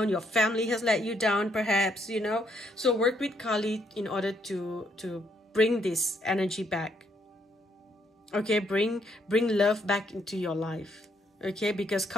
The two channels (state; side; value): normal; both; correlation 0.72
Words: your family has let you down perhaps, you know? So work with Kali in order to bring this energy back, okay? Bring love back into your life, okay? Because